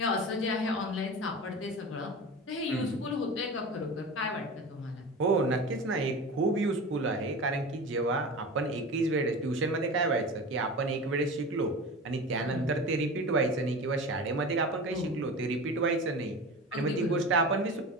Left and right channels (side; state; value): both; normal; correlation 0.31